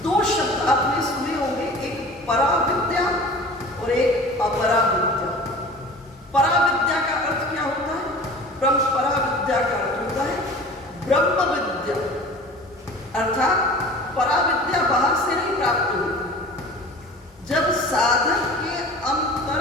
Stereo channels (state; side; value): normal; both; correlation 0.40